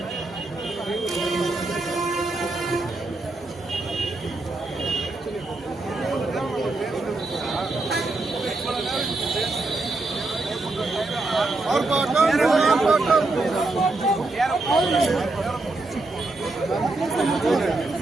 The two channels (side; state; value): left; quieter; 3.1 dB